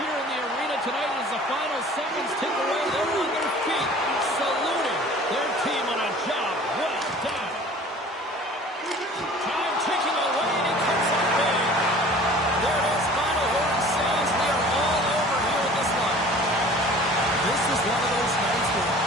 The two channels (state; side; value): normal; both; correlation 0.46